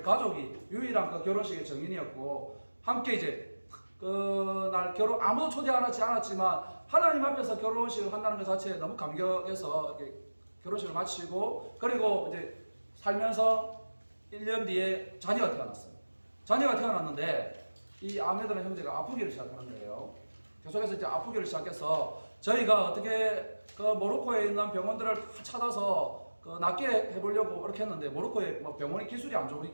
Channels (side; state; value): both; inverted; correlation -1.00